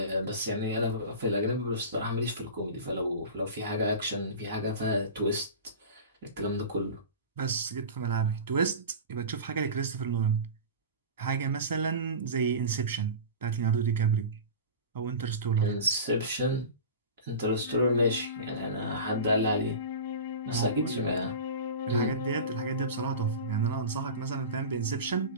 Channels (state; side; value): inverted; both; correlation -0.32